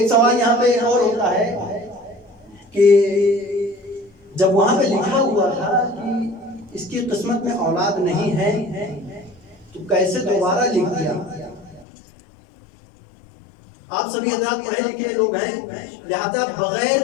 سوال یہاں پہ اور ہوتا ہے کہ جب وہاں پہ لکھا ہوا تھا کہ اس کی قسمت میں اولاد نہیں ہے تو کیسے دوبارہ لکھ دیا؟ آپ سبھی حضرات پڑھے لکھے لوگ ہیں، لہذا بغیر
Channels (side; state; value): right; drops out; at 11.9 s